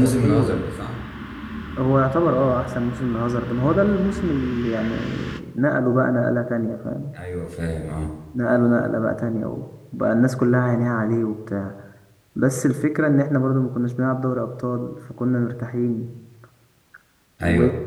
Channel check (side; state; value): both; identical; correlation 1.00